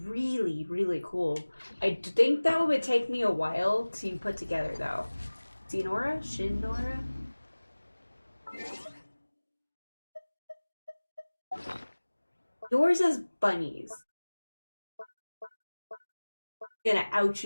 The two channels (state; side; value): inverted; both; correlation -1.00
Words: really cool. I think that would take me a while to put together, though. Shinora? Shinora? Yours is bunnies. I'm gonna out